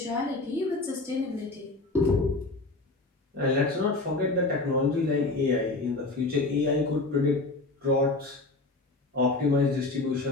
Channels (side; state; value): right; quieter; 3.2 dB